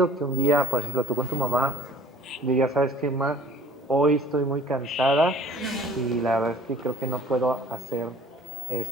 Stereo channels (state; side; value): normal; both; correlation 0.51